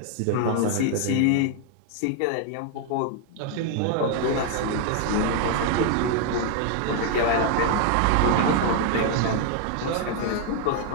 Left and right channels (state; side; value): different; both; correlation 0.00